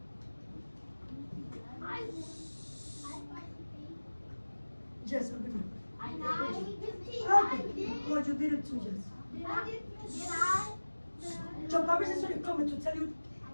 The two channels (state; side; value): inverted; both; correlation -1.00